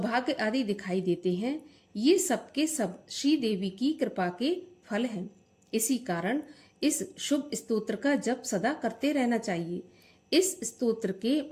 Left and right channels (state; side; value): identical; both; correlation 1.00